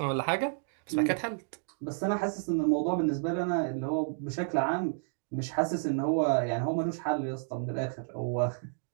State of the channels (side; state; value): left; silent; digital silence